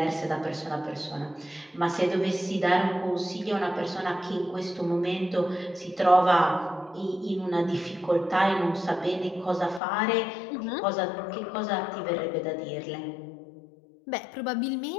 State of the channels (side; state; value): right; drops out; at 9.8 s